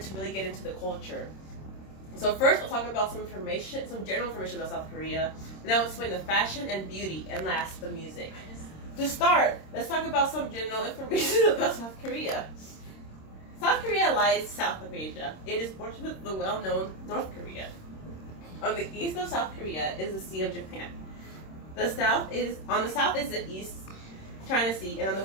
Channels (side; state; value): right; late; 26 ms